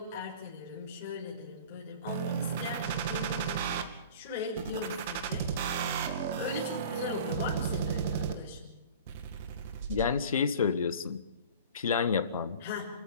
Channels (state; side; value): inverted; both; correlation -0.41